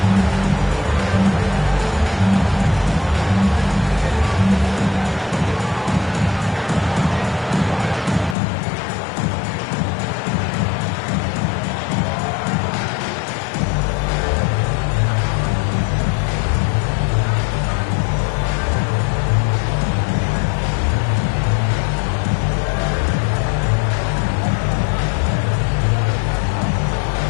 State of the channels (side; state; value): right; drops out; at 8.3 s